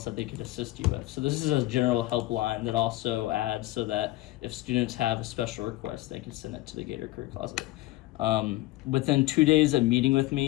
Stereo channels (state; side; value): quieter; right; 18.0 dB